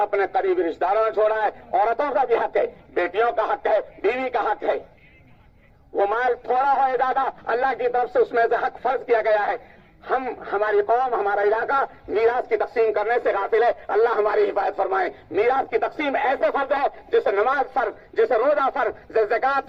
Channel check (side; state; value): both; identical; correlation 1.00